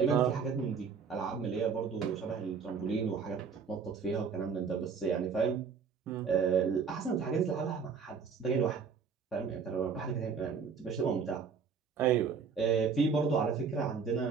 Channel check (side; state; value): left; quieter; 5.9 dB